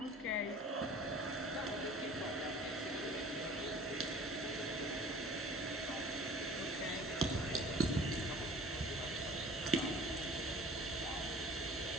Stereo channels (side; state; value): both; normal; correlation 0.46